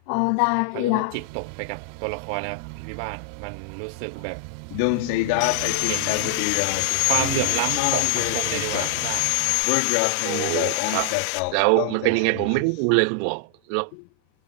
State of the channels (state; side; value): different; both; correlation -0.01